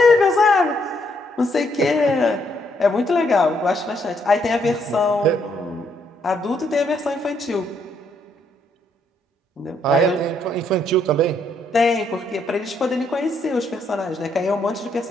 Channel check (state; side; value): normal; both; correlation 0.73